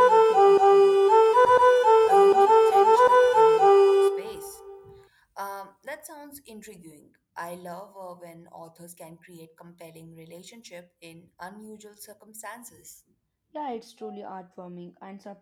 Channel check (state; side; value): identical; both; correlation 1.00